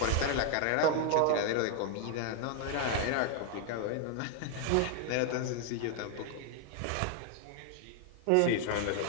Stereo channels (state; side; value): different; both; correlation 0.00